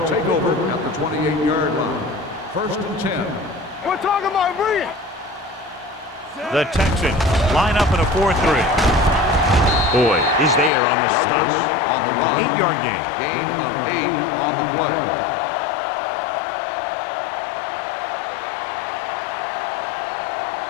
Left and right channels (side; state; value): right; drops out; at 10.7 s